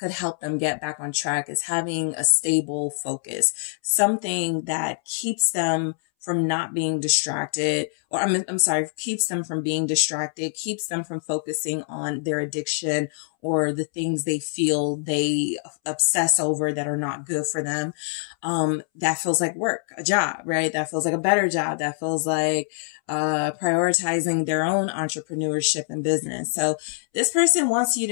help them get back on track is having a stable focus, something that keeps them from not being distracted, or I'm sorry, keeps them from being distracted, keeps them from focusing on their addiction or the things they feel they obsess over that are not good for them. That feels like work, a job, right? That feels like a better job. That feels like prioritizing their own entrepreneurship and business. So this person wants you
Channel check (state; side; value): silent; right; 62 dB below the other